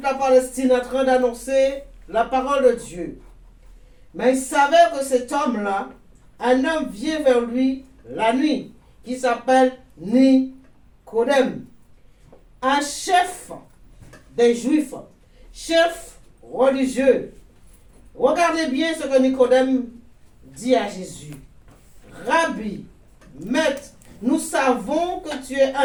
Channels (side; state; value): both; identical; correlation 1.00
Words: la Palestine en train d'annoncer la parole de Dieu. Mais il savait que cet homme-là, un homme vient vers lui la nuit, qui s'appelle Nicodème, un chef des Juifs, chef religieux. Regardez bien ce que Nicodème dit à Jésus. Rabbi, maître, nous savons que tu es